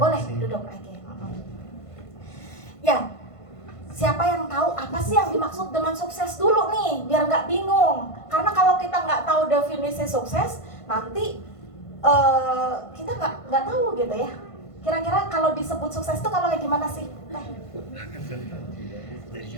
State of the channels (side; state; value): right; late; 1.5 ms